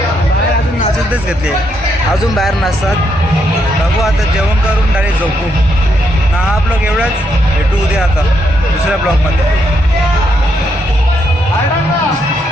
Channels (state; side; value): normal; both; correlation 0.77